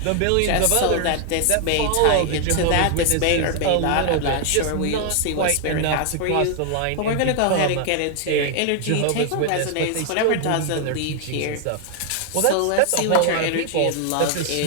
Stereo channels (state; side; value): different; both; correlation 0.00